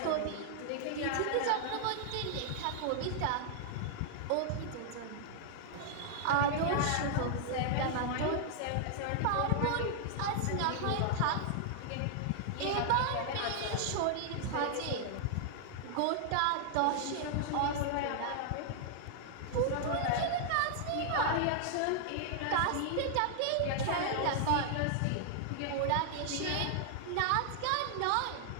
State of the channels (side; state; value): both; different; correlation -0.01